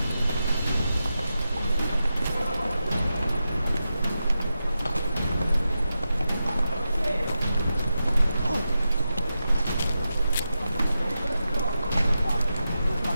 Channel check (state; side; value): inverted; both; correlation -0.89